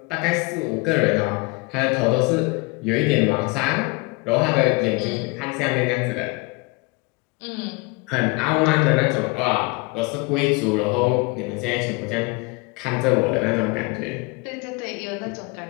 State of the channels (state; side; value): quieter; right; 26.8 dB